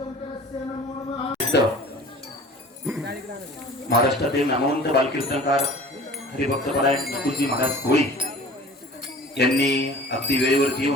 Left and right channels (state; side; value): normal; both; correlation 0.44